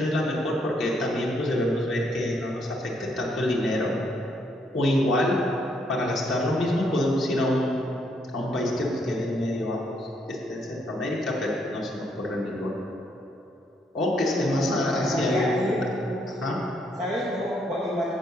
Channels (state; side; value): normal; both; correlation 0.73